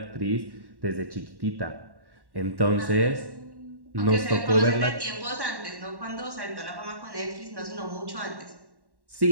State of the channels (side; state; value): left; late; 1.1 ms